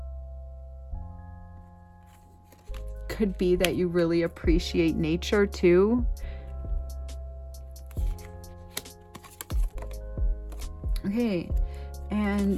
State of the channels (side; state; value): both; identical; correlation 1.00